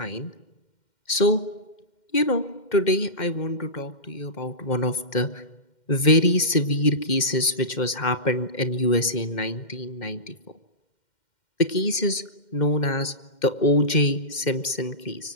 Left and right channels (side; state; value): right; late; 2.1 ms